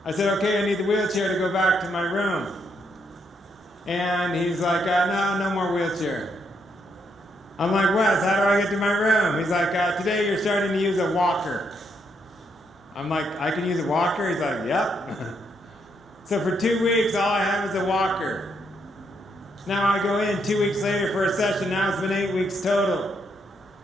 I said, okay, I need the wheelchair to go back to my room. And he's like, no more wheelchair. I'm like, Wes, how do I get to my room? He's like, today you're starting to use a walker. I'm like, I can use a walker? He's like, yep. So for 2 weeks, all I have is a walker. Now I go in 2 weeks later for a session. Now it's been 8 weeks total.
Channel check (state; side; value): normal; both; correlation 0.76